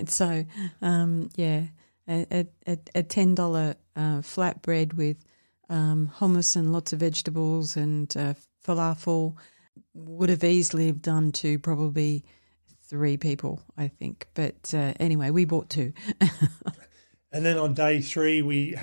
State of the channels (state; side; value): inverted; both; correlation -1.00